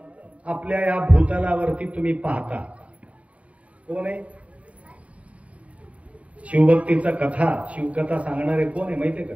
आपल्या या भूतलावरती तुम्ही पाहता. कोण आहे? शिवभक्तीचा कथा शिवकथा सांगणारे कोण आहे माहितीये का?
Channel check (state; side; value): late; left; 0.066 ms